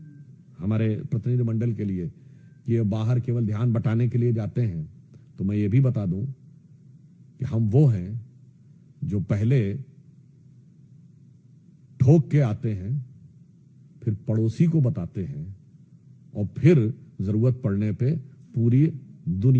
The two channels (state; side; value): identical; both; correlation 1.00